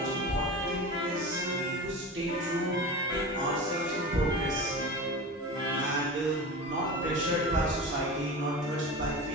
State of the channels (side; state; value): both; normal; correlation 0.30